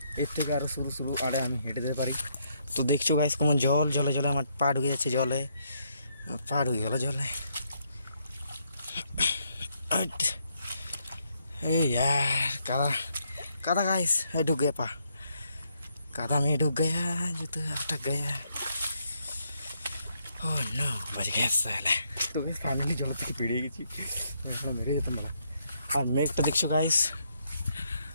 এর থেকে আরও শুরু আড়ে আমি হেঁটে যেতে পারি। তো দেখছো গাইস কেমন জলে আমার পা ঢুকে যাচ্ছে জলে, পা ঢুকে গেল জলে। এই यार कादा गाइस, ढुक गया पा, कादा में ढुक गया, जूता अटक गया। ओह नो, बच गया साला। তো গাইস ফাইনালি জল থেকে বেরিয়ে গেছি, এখন মেরে যেতাম বলা। আর মেঘটা দেখছো গাইস,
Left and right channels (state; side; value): inverted; both; correlation -0.74